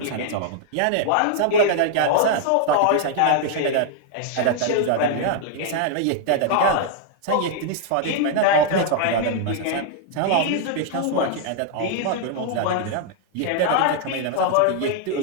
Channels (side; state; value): both; different; correlation 0.00